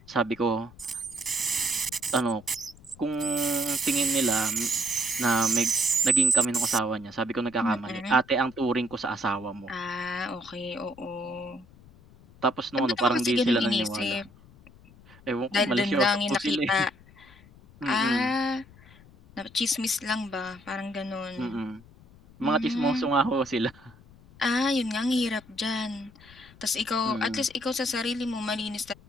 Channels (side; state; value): left; noise; rumble, 24 dB below the sound